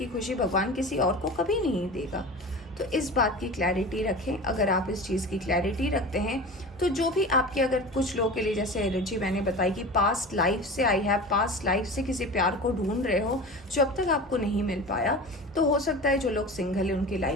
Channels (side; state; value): both; normal; correlation 0.33